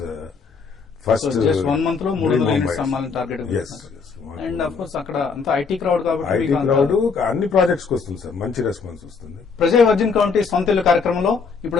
first. So just 1 month లో 300 units అమ్మాలని target. Yes. And of course అక్కడ అంతా ఐటీ క్రౌడ్ కాబట్టి ఐటీ మీకు అంత- క్రౌడ్ అన్ని ప్రాజెక్ట్స్ కి వస్తుంది సార్, మంచి రెస్పాన్స్ వస్తుంది. ప్రజా వర్జిన్ కౌంటీ సొంత ఇల్లు కార్యక్రమంలో ఇప్పుడు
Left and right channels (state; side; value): quieter; right; 5.2 dB